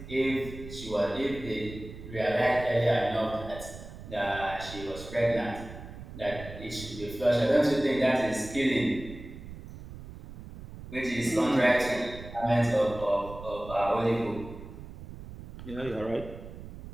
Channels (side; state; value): right; noise; rumble, 13 dB below the sound